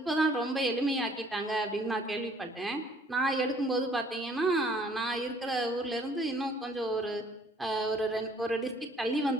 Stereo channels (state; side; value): normal; both; correlation 0.59